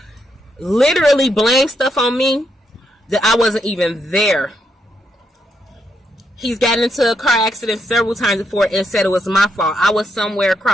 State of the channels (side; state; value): both; normal; correlation 0.79